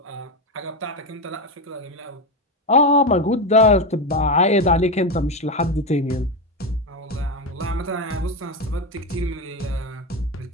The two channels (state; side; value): normal; both; correlation 0.13